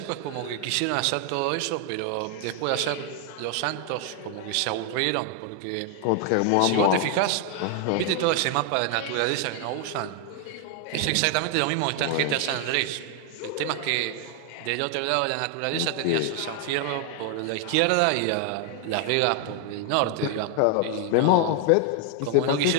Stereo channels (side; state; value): both; different; correlation 0.00